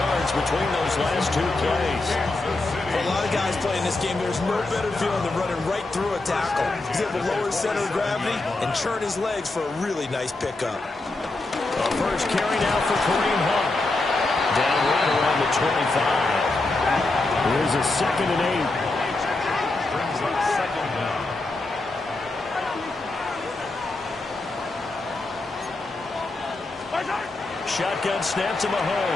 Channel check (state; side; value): quieter; right; 3.1 dB